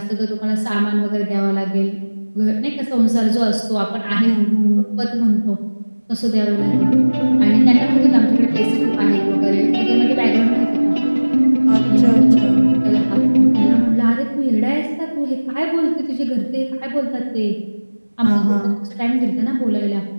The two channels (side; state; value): both; inverted; correlation -1.00